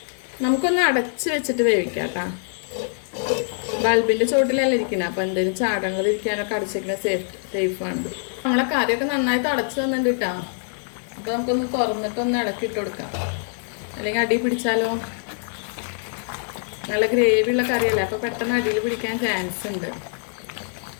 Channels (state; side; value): silent; right; digital silence